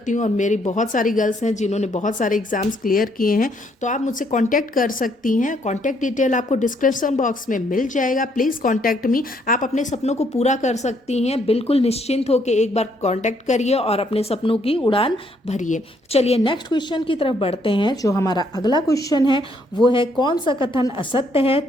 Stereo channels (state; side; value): normal; both; correlation 0.70